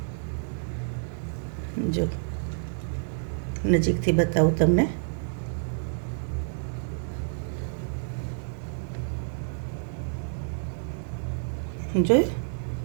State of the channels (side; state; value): left; silent; digital silence